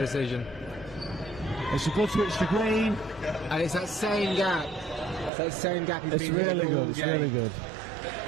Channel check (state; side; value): drops out; left; at 5.3 s